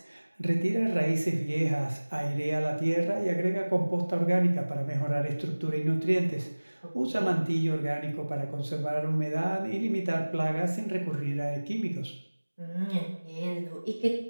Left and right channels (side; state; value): both; inverted; correlation -1.00